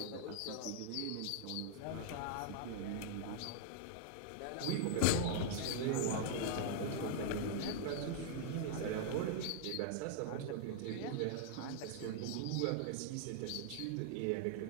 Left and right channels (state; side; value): different; both; correlation -0.01